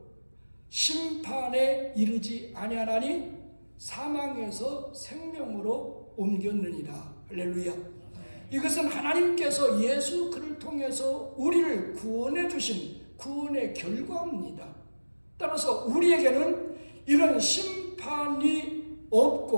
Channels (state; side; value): inverted; both; correlation -1.00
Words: 심판에 이르지 아니하나니 사망에서 생명으로 옮겼느니라. 할렐루야. 이것은 하나님께서 예수 그를 통해서 우리를 구원해 주신 구원의 결과입니다. 따라서 우리에게는 이런 심판이